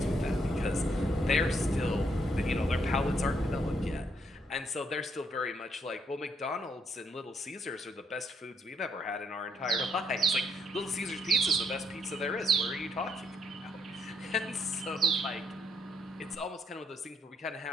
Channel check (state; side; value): normal; both; correlation 0.72